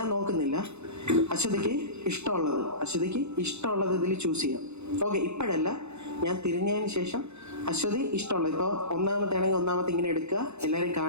നോക്കുന്നില്ല. അശ്വതിക്ക് ഇഷ്ടമുള്ളത് ഇതിൽ ചൂസ് ചെയ്യാം. ഓക്കെ, ഇപ്പോഴല്ല, ഞാൻ തിരിഞ്ഞതിന് ശേഷം അശ്വതി ഇഷ്ടമുള്ളത്. ഇപ്പോൾ ഒന്നാമത്തെ ആണെങ്കിൽ ഒന്നാമത്തെ ഇങ്ങനെ എടുക്കുക, എല്ലാവരും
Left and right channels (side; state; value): left; late; 0.81 ms